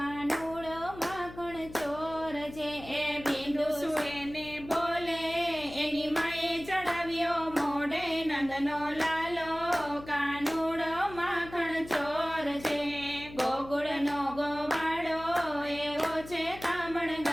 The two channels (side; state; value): left; noise; hum, 15 dB below the sound